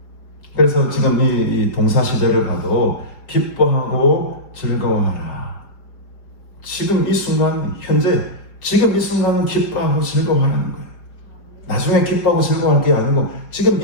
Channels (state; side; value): late; right; 5.0 ms